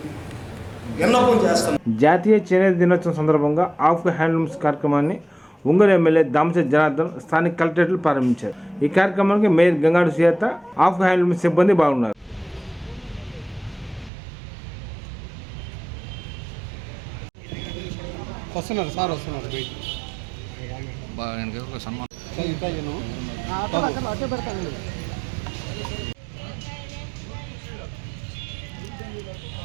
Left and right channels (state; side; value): drops out; left; at 14.1 s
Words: విన్నపం చేస్తాం. జాతీయ చేనేత దినోత్సవం సందర్భంగా ఆఫ్ హ్యాండ్లూమ్స్ కార్యక్రమాన్ని ఒంగోలు ఎమ్మెల్యే దామచర్ల జనార్దన్ స్థానిక కలెక్టరేట్లు ప్రారంభించారు. ఈ కార్యక్రమానికి mayor Gangadu Sujatha, of handlooms సిబ్బంది బాగున్నారు. వస్తున్నారు సార్, వస్తున్నారు.